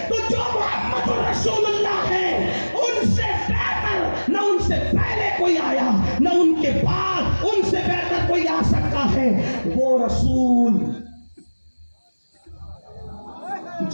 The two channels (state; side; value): inverted; both; correlation -1.00